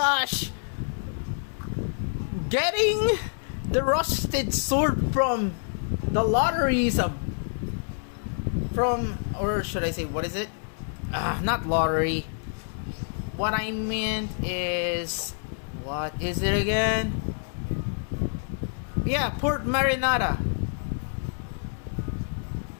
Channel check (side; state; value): right; silent; digital silence